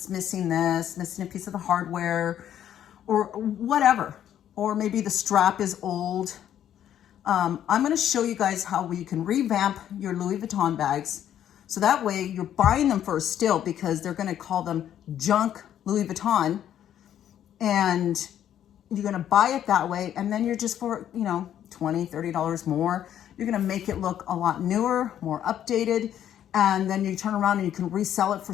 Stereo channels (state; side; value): quieter; right; 10.6 dB